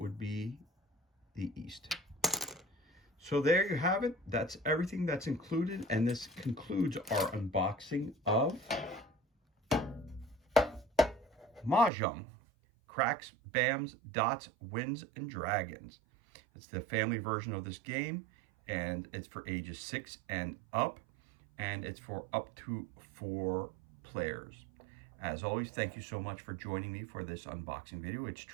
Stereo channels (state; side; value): drops out; left; at 11.9 s